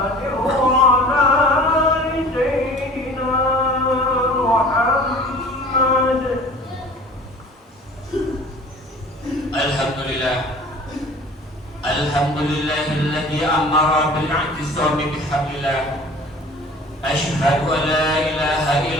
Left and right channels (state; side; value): normal; both; correlation 0.45